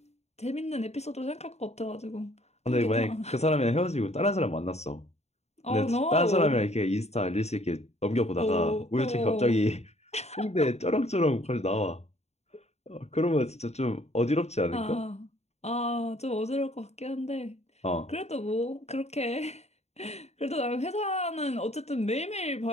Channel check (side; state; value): right; late; 0.31 ms